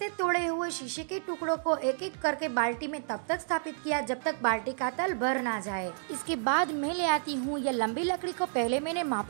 तोड़े हुए शीशे के टुकड़ों को एक एक करके बाल्टी में तब तक स्थापित किया जब तक बाल्टी का तल भर ना जाए। इसके बाद मैं ले आती हूँ यह लंबी लकड़ी को पहले मैंने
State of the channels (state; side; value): silent; left; digital silence